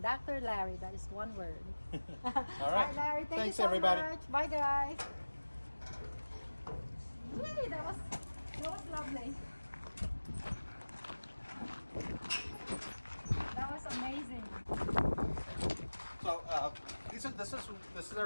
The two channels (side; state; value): both; inverted; correlation -1.00